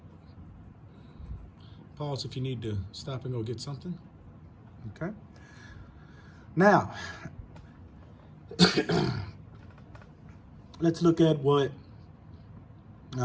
Pause if you need to stop and go get something. Okay. Now, let's look at what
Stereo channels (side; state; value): both; identical; correlation 1.00